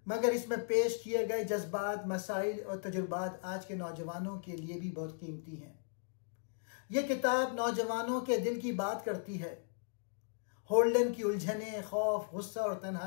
मगर इसमें पेश किए गए जज्बात, मसाइल और तजुर्बात आज के नौजवानों के लिए भी बहुत कीमती हैं। यह किताब नौजवानों के दिल की बात करती है। होल्डन की उलझने, खौफ, गुस्सा और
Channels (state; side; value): silent; right; digital silence